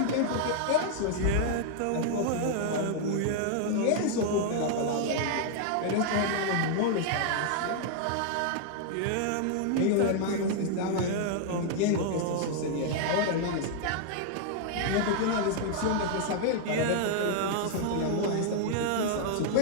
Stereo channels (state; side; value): different; both; correlation -0.01